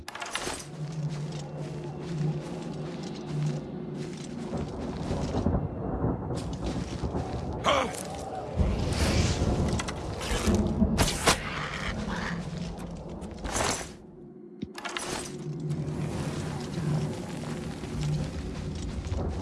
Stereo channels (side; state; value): both; identical; correlation 1.00